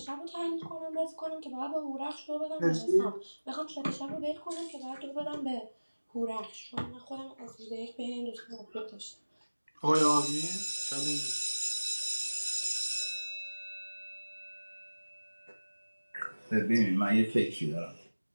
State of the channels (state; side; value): inverted; both; correlation -1.00